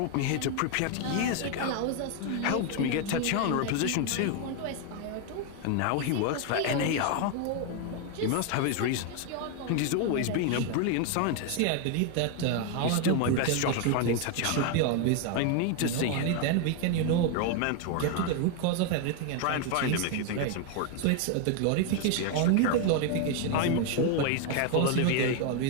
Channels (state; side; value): different; both; correlation 0.01